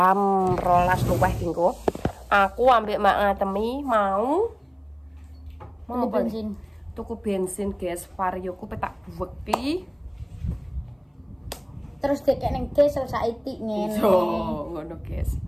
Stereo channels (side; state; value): both; identical; correlation 1.00